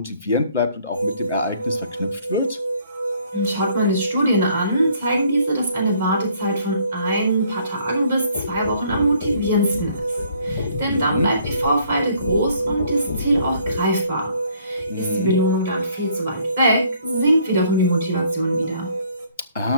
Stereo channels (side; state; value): both; inverted; correlation -0.62